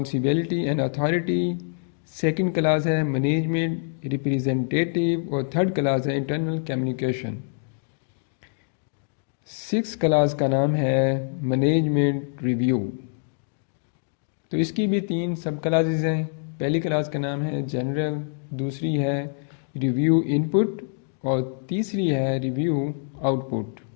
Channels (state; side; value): silent; right; digital silence